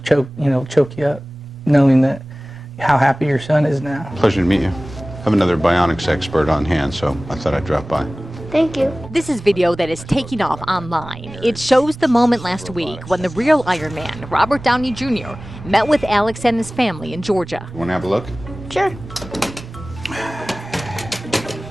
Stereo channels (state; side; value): normal; both; correlation 0.98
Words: you up, knowing that how happy your son is now. Pleasure to meet you. I have another bionics expert on hand, so I thought I'd drop by. Thank you. This is video that is taking off online. It shows the moment last week when the real Iron Man, Robert Downey Jr., met with Alex and his family in Georgia. You want to have a look? Sure.